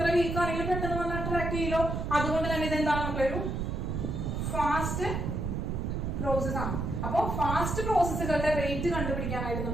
വീക്ക് ആണെങ്കിലും പെട്ടെന്ന് വന്ന് അട്രാക്ട് ചെയ്യലോ. അതുകൊണ്ട് തന്നെ ഇതെന്താണ് നമ്മളൊരു ഫാസ്റ്റ് പ്രോസസ് ആണ്. അപ്പൊ ഫാസ്റ്റ് പ്രോസസ്സുകളുടെ റേറ്റ് കണ്ടുപിടിക്കാനായിട്ട്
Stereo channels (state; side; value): noise; right; rumble, 2 dB below the sound